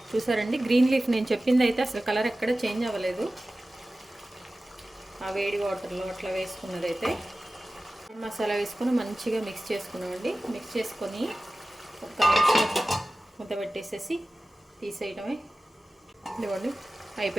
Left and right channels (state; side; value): normal; both; correlation 0.96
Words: చూసారండి. గ్రీన్ లీఫ్ నేను చెప్పింది అయితే అసలు కలర్ ఎక్కడ చేంజ్ అవ్వలేదు, ఆ వేడి వాటర్లో అట్లా వేసుకున్నదైతే. మసాలా వేసుకొని మంచిగా మిక్స్ చేసుకున్నామండి. మిక్స్ చేసుకొని 1 నిమిషం మూత పెట్టేసేసి తీసేయడమే. ఇదిగోండి